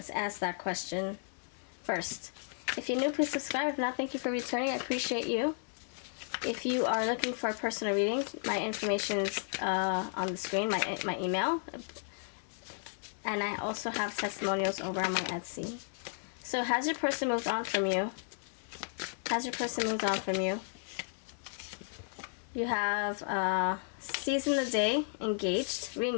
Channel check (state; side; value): silent; right; digital silence